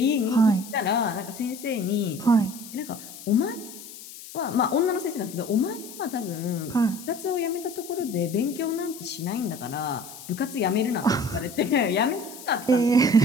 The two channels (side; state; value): left; noise; hiss, 15 dB below the sound